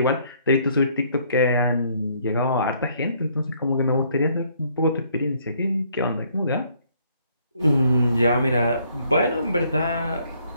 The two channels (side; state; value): both; inverted; correlation -0.65